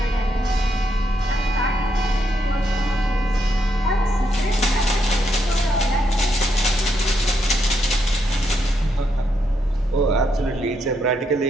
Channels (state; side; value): normal; both; correlation 0.79